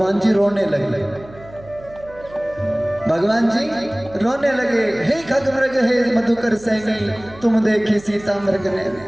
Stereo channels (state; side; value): noise; right; hum, 21 dB below the sound